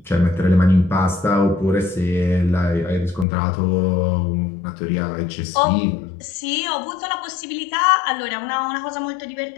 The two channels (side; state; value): right; drops out; at 3.2 s